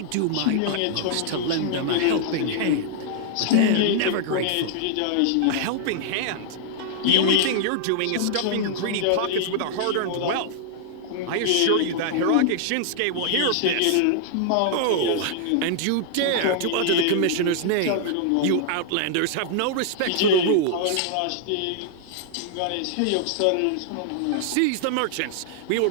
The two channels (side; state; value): both; different; correlation -0.01